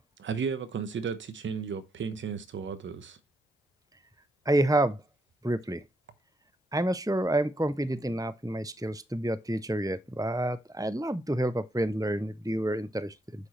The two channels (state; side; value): normal; both; correlation 0.78